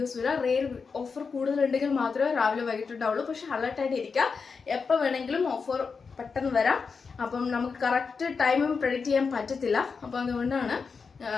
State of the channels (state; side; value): quieter; right; 5.2 dB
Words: വരിക. റെയർ ഓഫർ കൂടുതലുണ്ടെങ്കിൽ മാത്രമേ രാവിലെ വൈകിട്ടുണ്ടാവുള്ളൂ. പക്ഷെ അലർട്ടായിട്ട് ഇരിക്കുക, എപ്പോൾ വേണമെങ്കിലും ഓഫർ പെട്ടെന്ന് വരാം. അപ്പം നമുക്ക് കറക്റ്റ് ടൈമും പ്രെഡിക്റ്റ് ചെയ്യാൻ പറ്റത്തില്ല. അപ്പോൾ